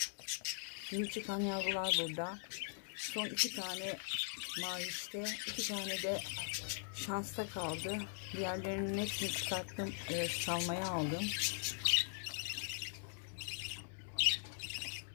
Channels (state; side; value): silent; right; digital silence